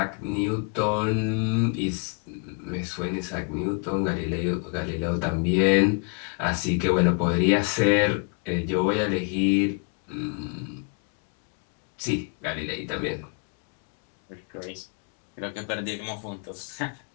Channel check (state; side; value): quieter; right; 35.1 dB